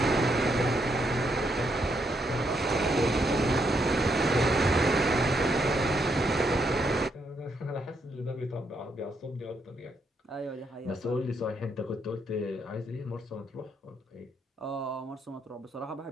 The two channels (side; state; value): both; normal; correlation 0.77